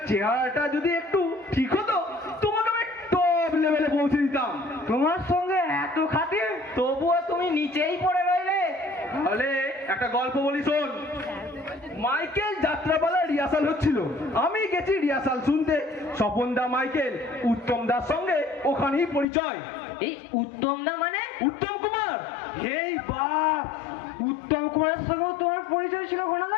চেহারাটা যদি একটু ঠিক হতো তোমাকে আমি টপ লেভেলে পৌঁছে দিতাম। তোমার সঙ্গে এত খাতির, তবুও তুমি নিচেই পড়ে রইলে। তাহলে একটা গল্প বলি শোন। মাইকেল যাত্রাপালা রিহার্সাল হচ্ছিল, আমি গেছি রিহার্সাল শুনতে। স্বপন দা মাইকেল উত্তম দার সঙ্গে ওখানেই পরিচয়। এই উত্তম না মানে? উত্তম কুমার? এই বাপ, উত্তম কুমারের সঙ্গেও তোমার পরিচয় ছিল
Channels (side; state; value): right; drops out; at 19.2 s